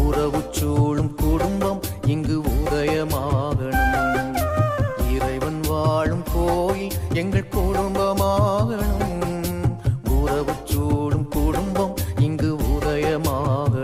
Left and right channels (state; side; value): identical; both; correlation 1.00